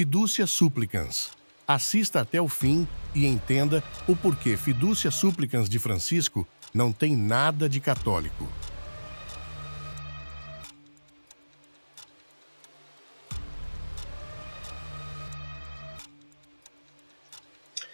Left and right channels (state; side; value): inverted; both; correlation -1.00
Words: Supplicans. Assista até o fim e entenda o porquê Fiducia Supplicans de Francisco não tem nada de católico.